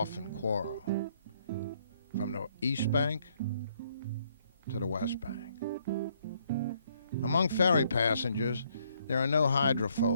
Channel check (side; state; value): both; inverted; correlation -0.69